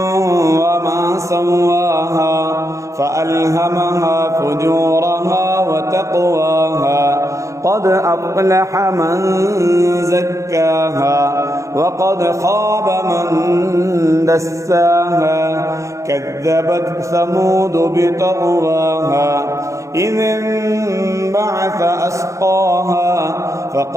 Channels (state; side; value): late; left; 0.15 ms